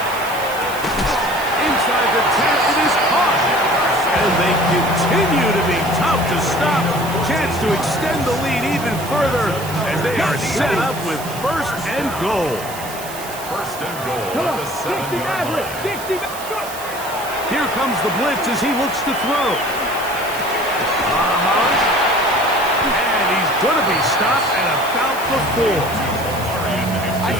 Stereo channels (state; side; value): noise; right; hiss, 13 dB below the sound